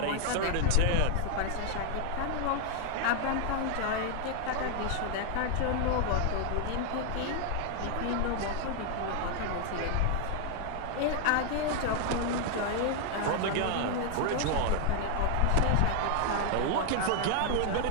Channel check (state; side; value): different; both; correlation 0.00